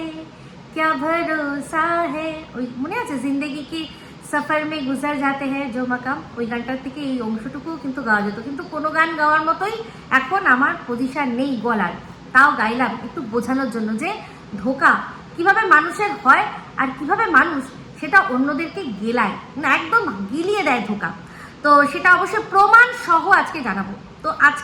क्या भरोसा है, ওই মনে আছে, জিন্দেগি কি সফর মে গুজার যাতে হ্যাঁ জো মাকাম, ওই গানটার থেকে এই অংশটুকুও কিন্তু গাওয়া যেত। কিন্তু কোনো গান গাওয়ার মতোই এখন আমার পজিশন নেই গলার, তাও গাইলাম একটু বোঝানোর জন্য যে ধোকা কিভাবে মানুষের হয় আর কিভাবে মানুষ সেটা অন্যদেরকে গেলায়, না একদম গিলিয়ে দেয় ধোকা। তো সেটা অবশ্যই প্রমাণ সহ আজকে জানাবো। তো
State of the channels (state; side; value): identical; both; correlation 1.00